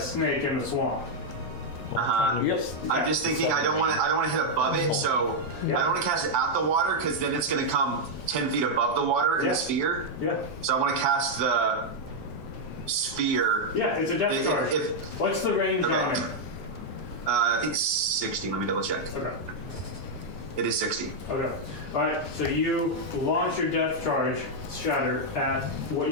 in the swamp. Yep. I'm just thinking I don't want to hit above it, so I don't want to cast it at the water because then it's going to come 10 feet above the water in the sphere. Yeah. So I want to cast the sphere. Yeah, it's a death charge. What's the range on it? I think 60. Let me double check. Okay. It is 60. Okay. Alright, so you launch your death charge, Shatter, at what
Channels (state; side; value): late; right; 7.8 ms